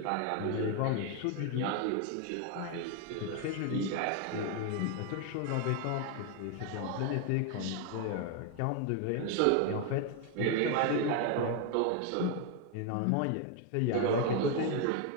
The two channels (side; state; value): both; different; correlation 0.01